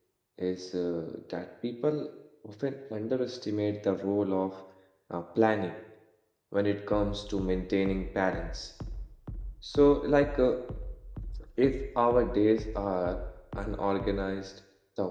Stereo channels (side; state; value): both; identical; correlation 1.00